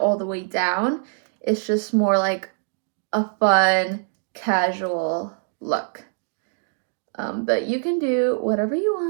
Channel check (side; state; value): left; silent; 63 dB below the other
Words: all the way down is just more like a fun, casual look. But you can do whatever you